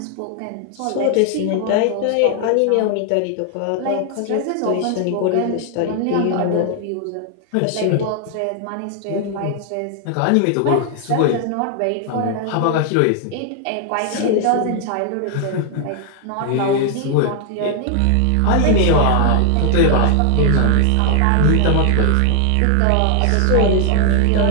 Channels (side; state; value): both; different; correlation 0.00